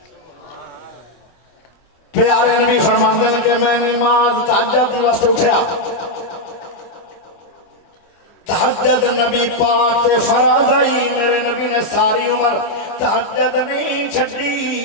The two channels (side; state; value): right; late; 24 ms